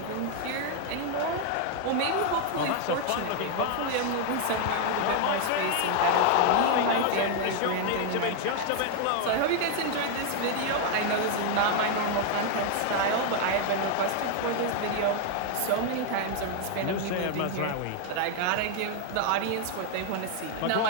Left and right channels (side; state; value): both; different; correlation 0.00